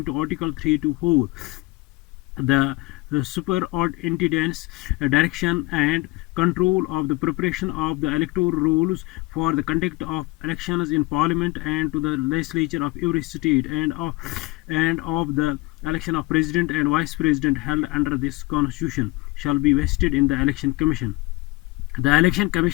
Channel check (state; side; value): quieter; right; 21.9 dB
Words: the superintendence direction and control of the preparation of the electoral rules for the conduct of elections in parliament and to the legislature of every state and of the election of president and vice president held under this constitution shall be vested in the election commission. The election